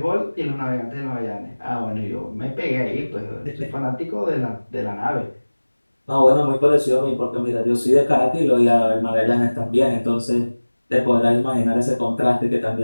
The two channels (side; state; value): both; inverted; correlation -1.00